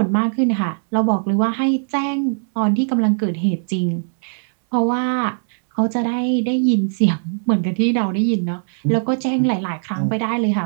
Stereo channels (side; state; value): left; silent; digital silence